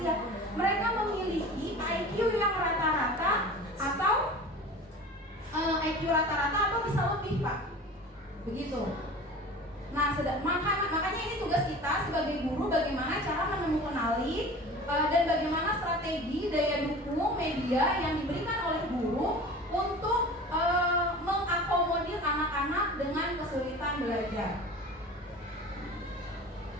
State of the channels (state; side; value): normal; both; correlation 0.38